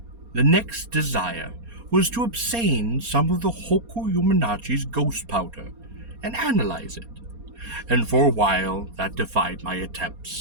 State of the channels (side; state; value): left; late; 4.3 ms